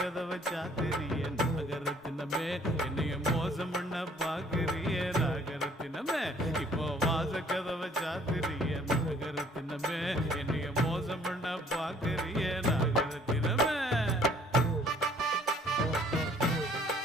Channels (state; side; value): normal; both; correlation 0.59